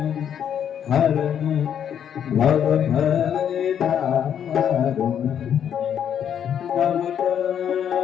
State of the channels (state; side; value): quieter; right; 8.9 dB